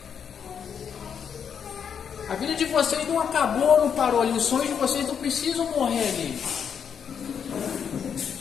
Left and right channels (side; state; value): right; quieter; 7.5 dB